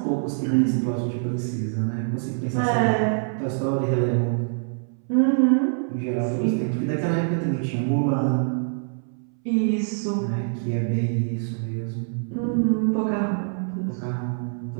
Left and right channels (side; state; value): left; silent; 62 dB below the other